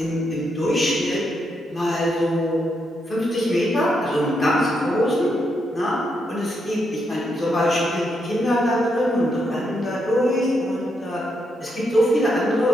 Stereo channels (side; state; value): both; normal; correlation 0.80